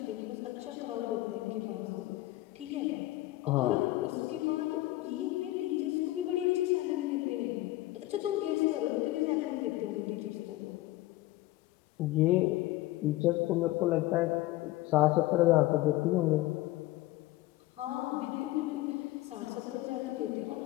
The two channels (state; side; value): quieter; right; 17.4 dB